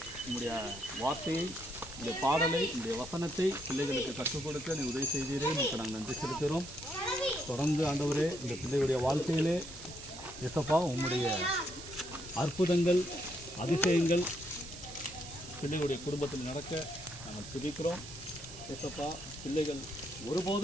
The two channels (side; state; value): right; noise; hiss, 13 dB below the sound